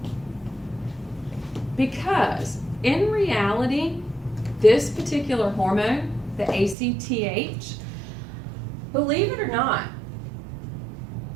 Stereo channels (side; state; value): left; drops out; at 6.8 s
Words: Because in reality, this particular hormone, the ACTH, believe it or not,